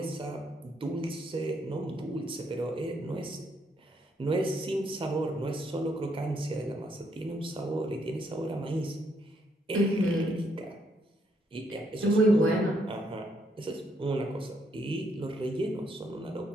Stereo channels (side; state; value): both; normal; correlation 0.73